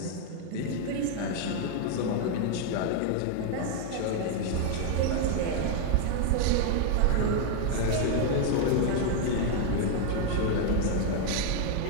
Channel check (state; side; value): different; both; correlation 0.00